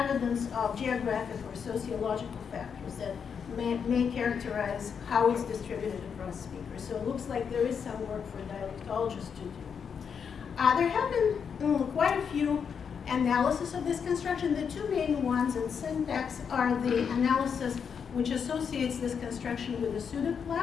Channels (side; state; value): right; quieter; 6.8 dB